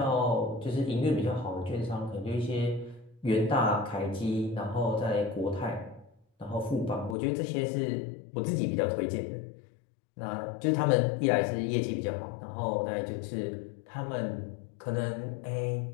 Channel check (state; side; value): drops out; right; at 7.2 s